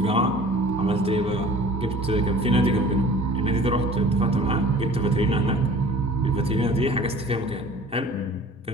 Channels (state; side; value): normal; both; correlation 0.46